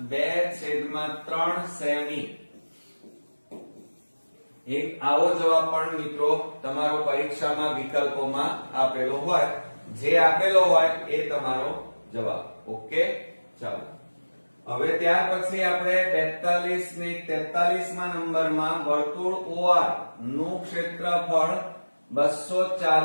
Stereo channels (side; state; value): both; inverted; correlation -1.00